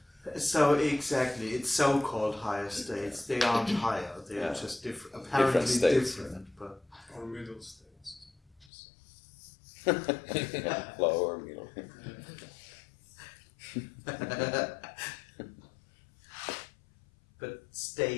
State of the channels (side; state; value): right; drops out; at 8.7 s